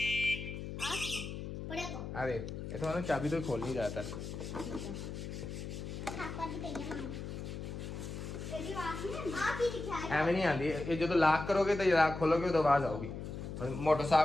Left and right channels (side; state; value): left; noise; hum, 7 dB below the sound